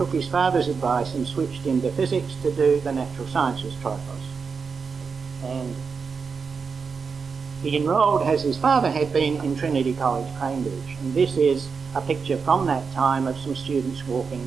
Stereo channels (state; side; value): quieter; left; 5.4 dB